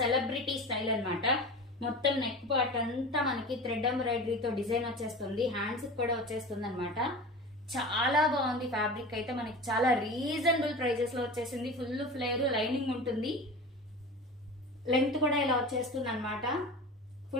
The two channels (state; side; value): normal; both; correlation 0.32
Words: స్టైల్ అన్నమాట. మొత్తం నెక్ పార్ట్ అంతా మనకి థ్రెడ్ ఎంబ్రాయిడరీతో డిజైన్ వచ్చేస్తుంది. హ్యాండ్స్ కూడా వచ్చేస్తుంది అనమాట. చాలా బాగుంది. ఫ్యాబ్రిక్ అయితే మనకి చాలా రీజనబుల్ ప్రైజెస్ లో వచ్చేసింది. ఫుల్ ఫ్లేర్, లైనింగ్ ఉంటుంది. లెంగ్త్ కూడా ఇలా వచ్చేస్తుంది అనమాట.